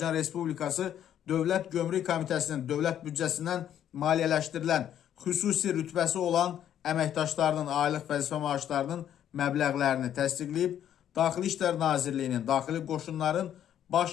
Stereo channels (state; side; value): quieter; right; 10.3 dB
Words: Respublikası Dövlət Gömrük Komitəsinin dövlət büdcəsindən maliyyələşdirilən xüsusi rütbəsi olan əməkdaşlarının aylıq vəzifə maaşlarının məbləğlərini təsdiqləyib. Daxili İşlər Nazirliyinin, Daxili Qoşunların